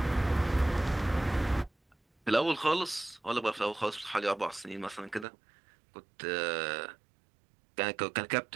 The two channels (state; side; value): drops out; left; at 5.2 s